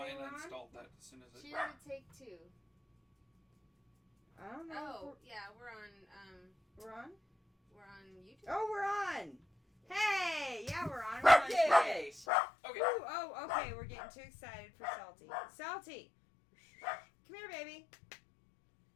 say I we're on? installed that as soon as it. She didn't take 2. I don't know. Oh, yeah, we're on. We're on? We're on YouTube. Oh, we're on! Hey! Yeah, we're on. We're on Yay! Twitch. Okay. Ooh, oh, okay. We're getting too excited for Salty. Salty! Come here, baby.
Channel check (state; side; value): drops out; right; at 12.2 s